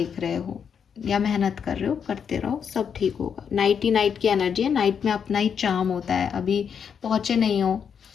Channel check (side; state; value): right; quieter; 7.2 dB